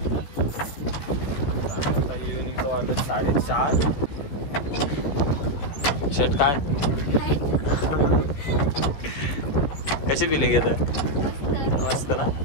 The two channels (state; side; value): late; right; 14 ms